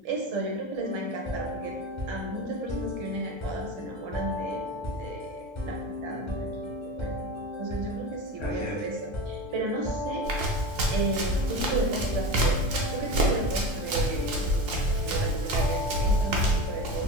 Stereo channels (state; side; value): late; left; 1.3 ms